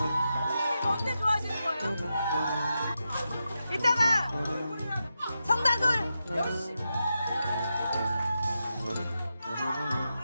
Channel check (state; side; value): inverted; both; correlation -0.88